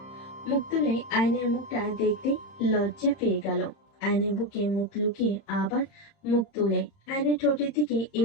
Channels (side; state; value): right; late; 30 ms